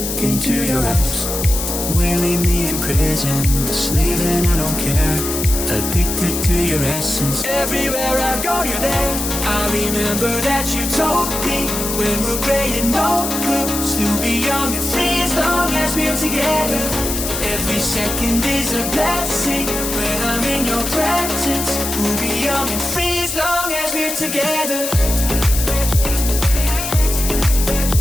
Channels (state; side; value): noise; left; hiss, 4 dB below the sound